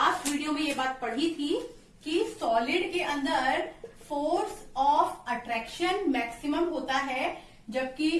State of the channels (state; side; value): identical; both; correlation 1.00